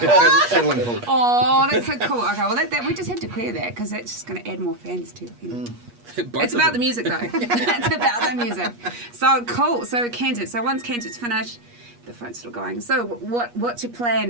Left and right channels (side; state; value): left; late; 8.4 ms